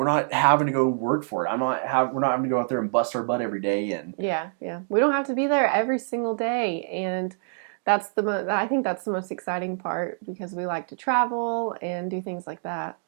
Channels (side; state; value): left; silent; digital silence